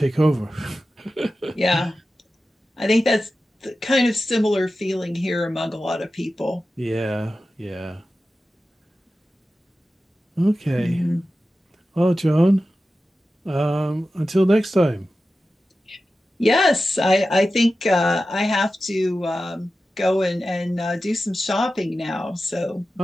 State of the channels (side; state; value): both; normal; correlation 0.93